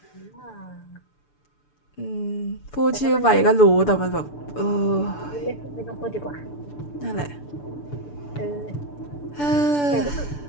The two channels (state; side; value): late; right; 6.9 ms